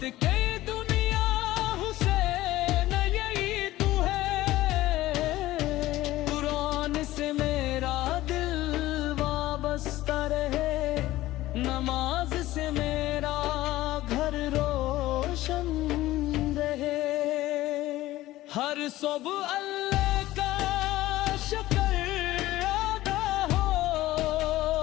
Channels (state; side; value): quieter; right; 16.4 dB